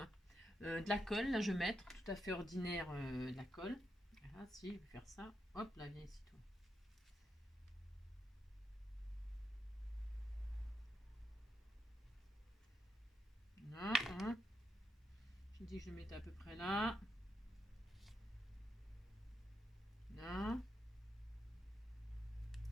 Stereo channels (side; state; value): both; normal; correlation 0.84